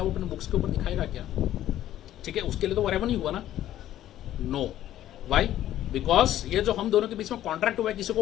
वो अपने बुक्स के ऊपर दिखाएगा क्या? ठीक है, उसके लिए तो वो रेवेन्यू हुआ ना। No, Y? बिकॉज ये जो हम दोनों के बीच में कॉन्ट्रैक्ट हुआ है किसी को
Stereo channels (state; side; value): quieter; right; 12.7 dB